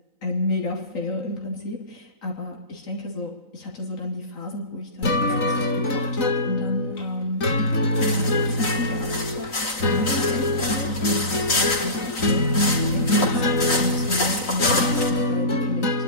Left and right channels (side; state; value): right; late; 3.9 ms